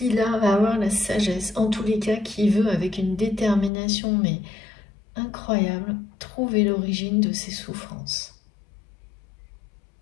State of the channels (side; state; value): right; drops out; at 3.7 s